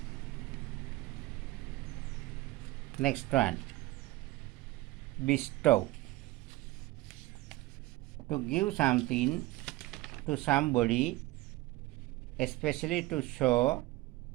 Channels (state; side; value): quieter; left; 19.0 dB